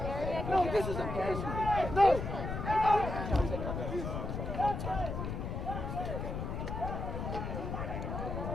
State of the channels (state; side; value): noise; left; rumble, 4 dB below the sound